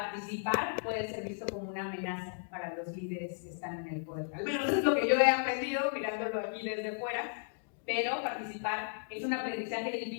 puede ser visto como una amenaza para los líderes que están en el poder. Al menos es lo que yo he aprendido mirándolo aquí desde fuera, pero participar es un aprendizaje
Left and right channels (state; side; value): silent; right; digital silence